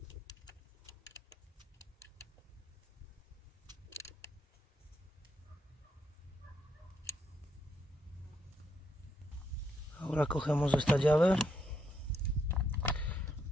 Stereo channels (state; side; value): normal; both; correlation 0.77